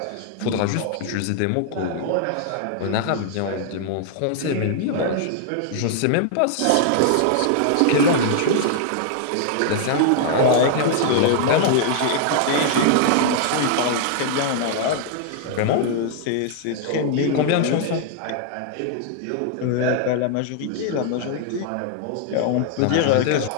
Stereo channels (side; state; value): both; different; correlation 0.00